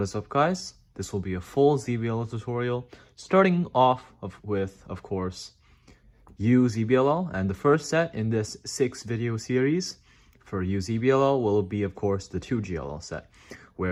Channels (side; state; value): both; identical; correlation 1.00